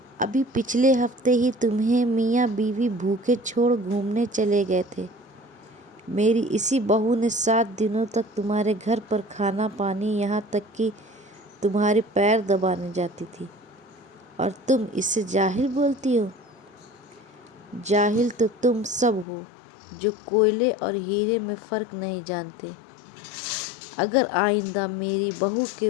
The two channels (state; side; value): drops out; right; at 19.2 s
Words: अभी पिछले हफ्ते ही तुम्हें मियाँ बीवी भूखे छोड़ घूमने चले गए थे। मेरी इसी बहू ने 7 दिनों तक तुम्हारे घर पर खाना पानी, यहाँ तक कि तुम्हारे पैर दबाने जाती थी, और तुम इसे जाहिल बोलती हो। जाहिल तो तुम सब हो जो कोयले और हीरे में फ़र्क नहीं जानते। अगर आइंदा मेरी बहू